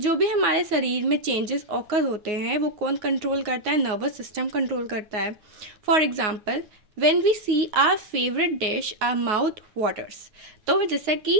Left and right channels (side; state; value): left; late; 9.5 ms